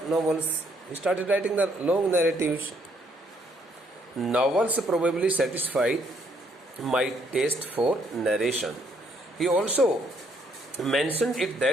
novels. He started writing the long narratives. Novels probably satisfied my taste for narration. He also mentioned it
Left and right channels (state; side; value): normal; both; correlation 0.69